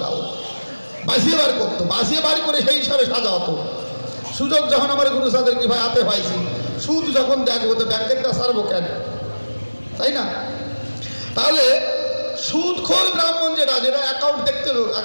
বাঁচিয়ে বার করতো, বাঁচিয়ে বার করে সেই হিসাবে সাজা হতো। সুযোগ যখন আমার গুরু সাদের কি ভাই হাতে পাইছি, সুদ যখন দেখবো তো ব্যাংকেরটা সারবো কেন, তাই না? তাহলে সুদখোর ব্রাহ্মণ যেটা, যেটা অ্যাকাউন্ট দেখতে হবে,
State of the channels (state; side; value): inverted; both; correlation -1.00